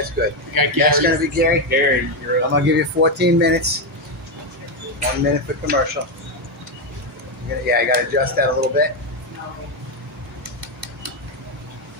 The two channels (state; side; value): normal; both; correlation 0.07